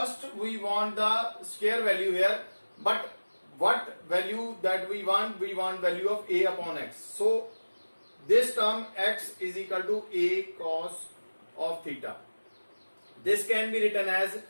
we want the square value here. But what value that we want? We want value of a upon x. So this term x is equal to a cos of theta. This can be written as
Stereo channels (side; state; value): both; inverted; correlation -1.00